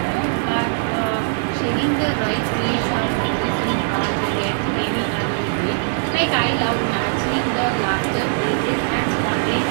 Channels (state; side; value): silent; left; digital silence